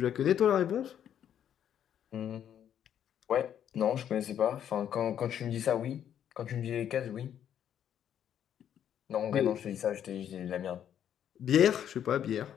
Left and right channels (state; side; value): quieter; right; 9.7 dB